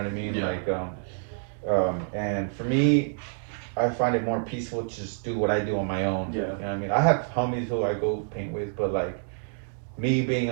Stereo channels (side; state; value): left; silent; digital silence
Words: I mean? And for me, I find it more peaceful to just do what I do on my own. You know what I mean? I have homies who I go paint with, but like me being